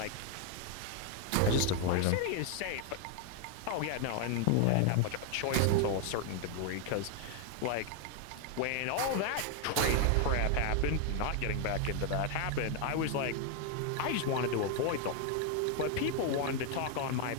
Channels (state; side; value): different; both; correlation 0.00